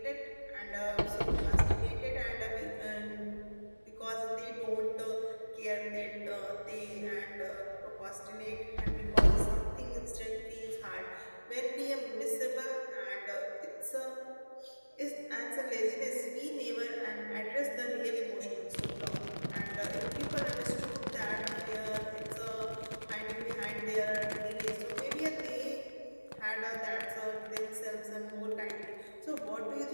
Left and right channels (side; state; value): both; inverted; correlation -1.00